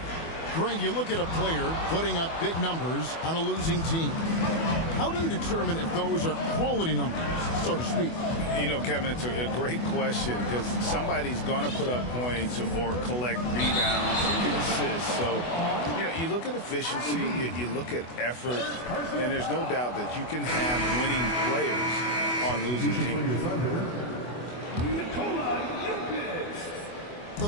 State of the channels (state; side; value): late; right; 24 ms